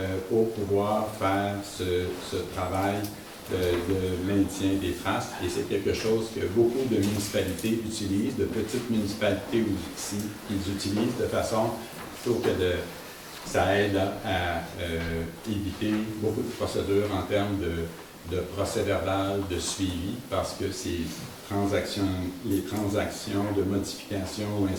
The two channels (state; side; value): identical; both; correlation 1.00